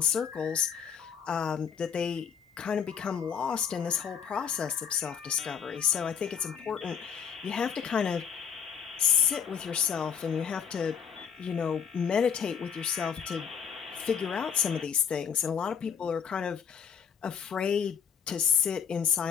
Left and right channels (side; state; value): right; quieter; 7.3 dB